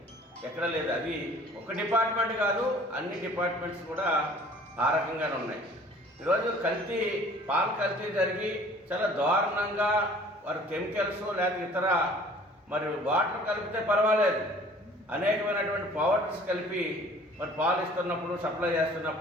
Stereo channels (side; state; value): both; normal; correlation 0.51